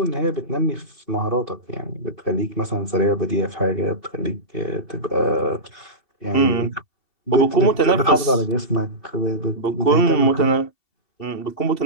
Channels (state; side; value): late; right; 2.7 ms